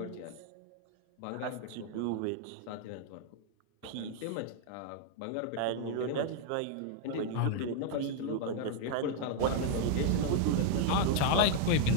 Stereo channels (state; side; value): different; both; correlation 0.00